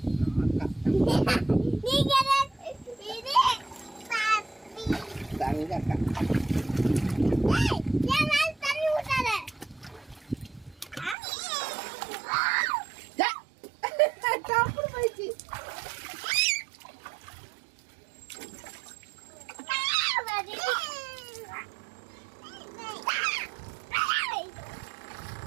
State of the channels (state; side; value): drops out; left; at 11.2 s